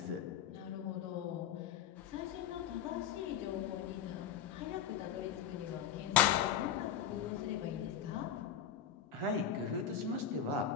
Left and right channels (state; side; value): quieter; right; 8.8 dB